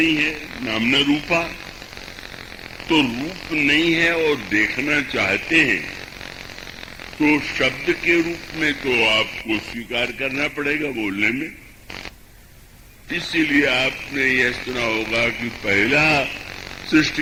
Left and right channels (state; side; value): identical; both; correlation 1.00